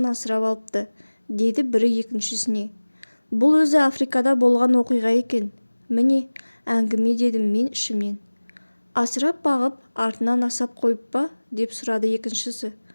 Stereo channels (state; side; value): inverted; both; correlation -1.00